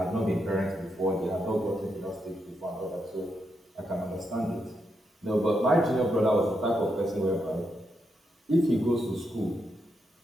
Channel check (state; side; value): normal; both; correlation 0.82